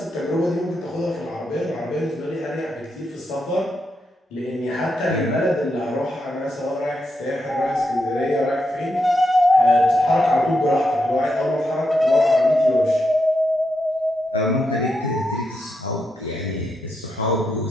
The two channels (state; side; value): normal; both; correlation 0.83